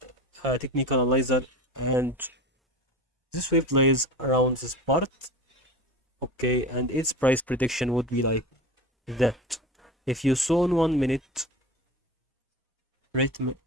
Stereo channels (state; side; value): normal; both; correlation 0.32